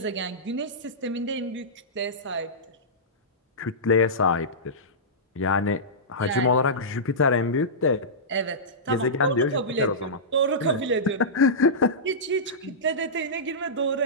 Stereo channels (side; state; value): both; normal; correlation -0.16